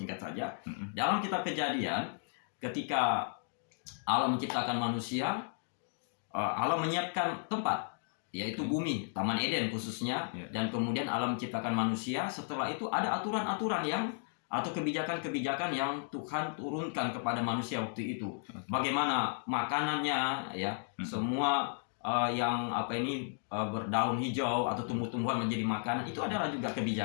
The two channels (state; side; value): silent; right; digital silence